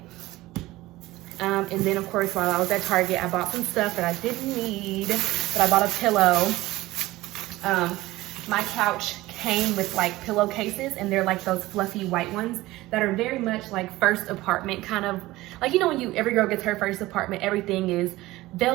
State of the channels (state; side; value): quieter; left; 18.2 dB